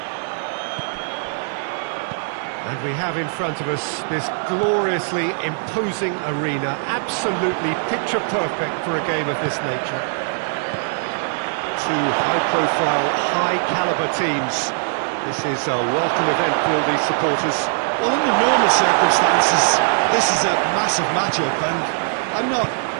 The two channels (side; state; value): left; silent; digital silence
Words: And we have in front of us this gloriously imposing arena, absolutely picture-perfect for a game of this nature. Two high-profile, high-caliber teams. This is a welcome event for all these supporters. Well, under normal circumstances, this is a massive matchup, and I'm not